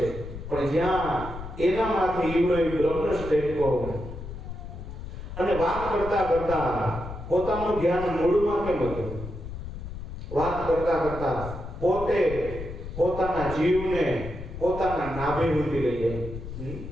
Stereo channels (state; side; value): noise; left; rumble, 9 dB below the sound